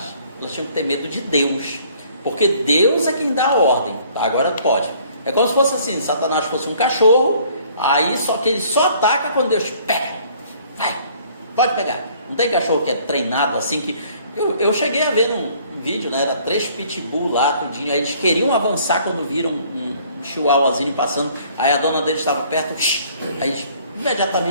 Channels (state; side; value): inverted; both; correlation -0.58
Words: elas tinham que ter medo de Deus, porque Deus é quem dá a ordem. Agora pode. É como se fosse assim, Satanás fosse um cachorro, aí só que ele só ataca quando Deus pega. Vai, pode pegar. Não tem cachorro que é treinado assim que... Eu cheguei a ver num vídeo, né? Era 3 pitbull lá, tudinho. Aí eles queriam avançar quando viram um chihuahuazinho passando. Aí a dona deles estava perto. Aí eles